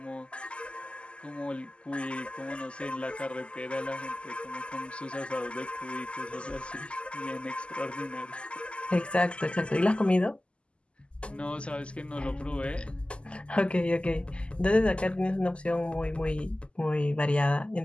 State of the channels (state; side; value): late; right; 0.053 ms